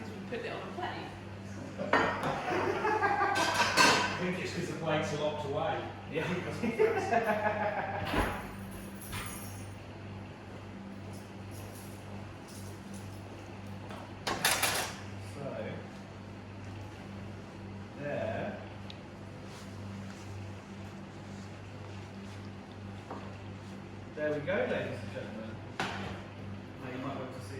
we put it on a plate. I think it's because the plates are locked away. Yeah. So, there There we go, ladies and gentlemen. Now you might be able to see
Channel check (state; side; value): identical; both; correlation 1.00